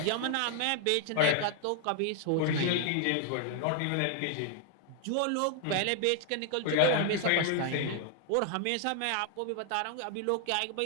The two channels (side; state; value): both; different; correlation 0.00